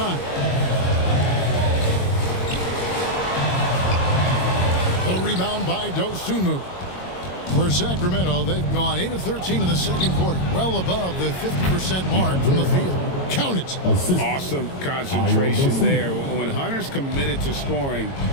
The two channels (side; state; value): right; late; 22 ms